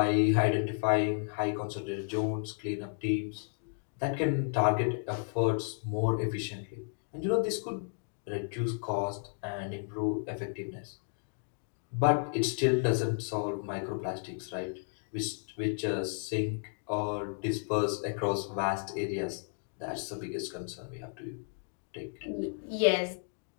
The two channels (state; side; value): silent; right; 56 dB below the other